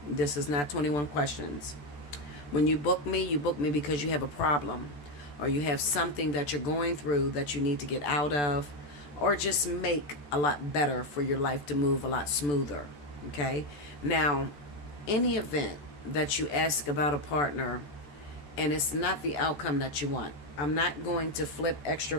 This is not 21 questions. When you book me because you have a problem, or you have something that you're going through that you need to get out of, or just make a lot better for your life to move a lot smoother. Okay, now, any event that you ask about a partner and it's not the outcome that you want, I'm not going to flip extra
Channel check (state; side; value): late; right; 14 ms